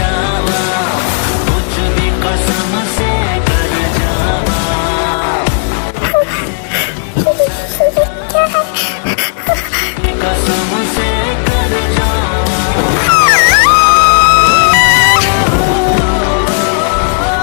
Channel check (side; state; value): right; silent; 74 dB below the other